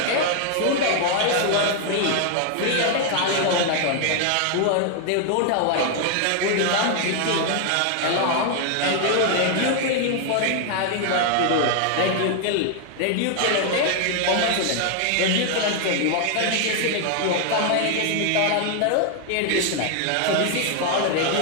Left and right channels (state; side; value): different; both; correlation 0.00